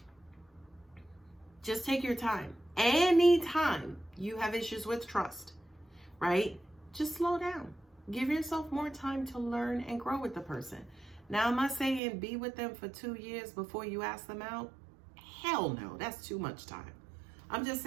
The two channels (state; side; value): drops out; left; at 12.0 s